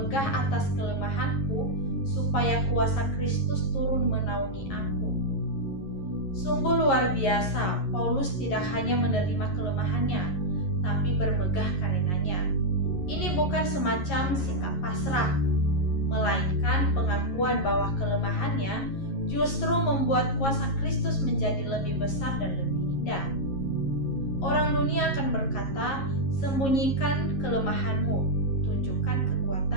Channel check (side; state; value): right; late; 11 ms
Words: atas kelemahanku, supaya kuasa Kristus turun menaungi aku. Sungguh luar biasa, Paulus tidak hanya menerima kelemahannya, tapi bermegah karenanya. Ini bukan semacam sikap pasrah, melainkan pengakuan bahwa kelemahannya justru membuat kuasa Kristus menjadi lebih besar dan lebih indah. Orang dunia akan berkata, sembunyikan kelemahanmu, tunjukkan